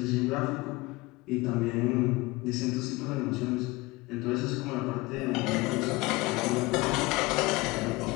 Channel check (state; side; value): quieter; right; 22.3 dB